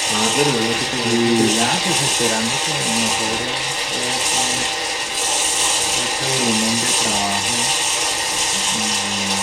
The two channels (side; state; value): both; identical; correlation 1.00